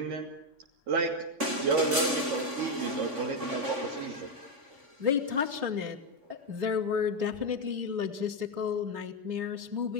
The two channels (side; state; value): left; late; 3.5 ms